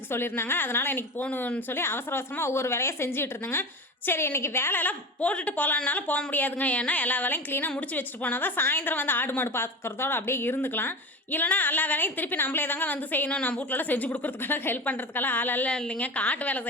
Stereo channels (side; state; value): both; normal; correlation 0.28